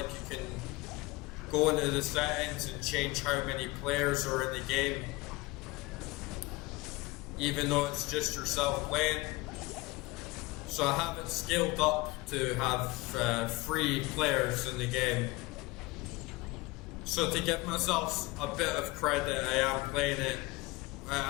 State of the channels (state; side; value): quieter; right; 22.1 dB